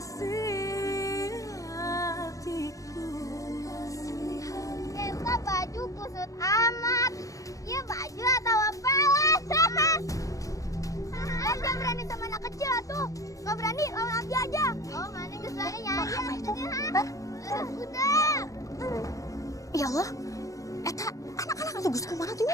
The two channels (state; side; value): late; right; 0.16 ms